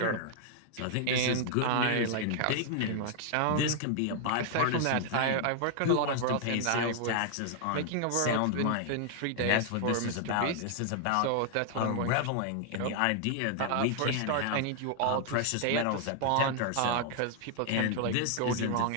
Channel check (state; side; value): different; both; correlation 0.00